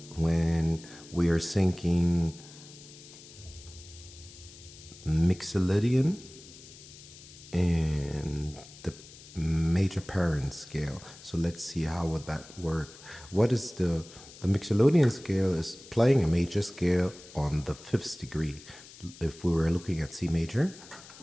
when we are syncing Mixolydian and the major parent scale. So let's see how would that work. What is the Mixolydian scale is playing a major scale on the 5th degree. If we were looking at C major,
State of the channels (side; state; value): left; noise; hiss, 19 dB below the sound